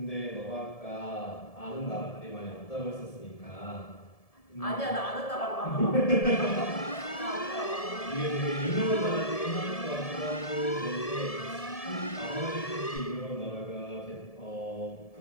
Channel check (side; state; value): right; late; 1.7 ms